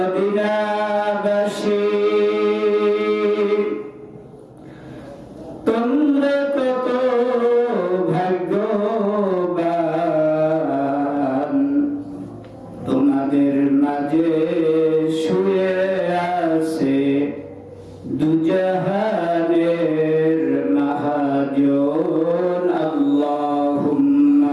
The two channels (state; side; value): identical; both; correlation 1.00